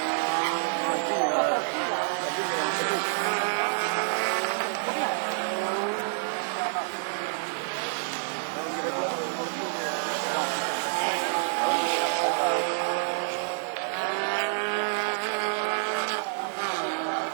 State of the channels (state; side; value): silent; left; digital silence